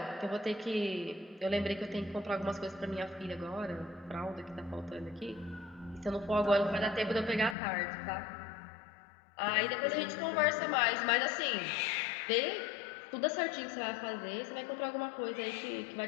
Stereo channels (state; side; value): drops out; right; at 7.6 s